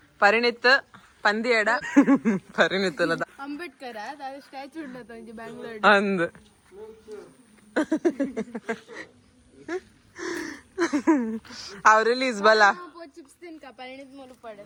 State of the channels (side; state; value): both; identical; correlation 1.00